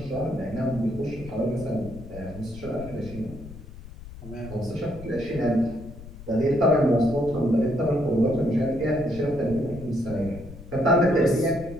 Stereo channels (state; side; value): noise; left; rumble, 15 dB below the sound